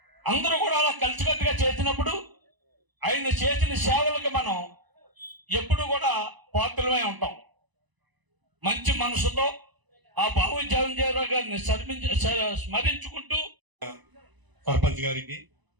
అందరూ కూడా అలా కలిసికట్టుగా చేసినప్పుడు ఆయన చేసిన సేవలకు మనం ఎప్పుడు కూడా పాత్రలమై ఉంటాం. మంచి మనసుతో ఆ బాబు జగజ్జీవన్ రావు గారిని స్మరించుకుంటూ సర్పంచ్ గారికి,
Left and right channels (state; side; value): late; left; 1.0 ms